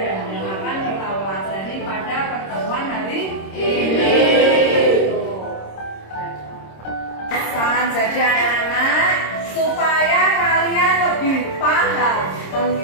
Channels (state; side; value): late; right; 26 ms